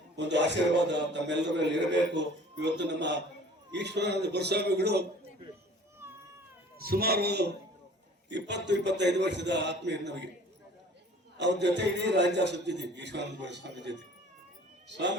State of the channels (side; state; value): both; normal; correlation 0.49